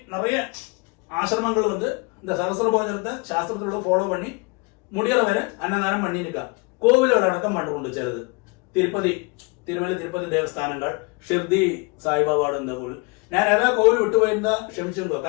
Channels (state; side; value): quieter; right; 29.6 dB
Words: நிறைய ஆசிரமங்கள் வந்து இந்த சகஸ்ர போஜனத்தை சாஸ்திரத்தோட ஃபாலோ பண்ணி முடிகிற வரை அன்னதானம் பண்ணிருக்கா. கோவில்கள் அடக்கம் பண்ணுண்டு சிலது. തിരുമല തിരുപ്പതി ദേവസ്ഥാനങ്ങൾ, ഷിർദി സായിബാബാട് എന്ന കോവിൽ. ഞാൻ ഏതാ കോവിൽ വിട്ടുപോയിരുന്ന ക്ഷമിച്ചിരുന്നു.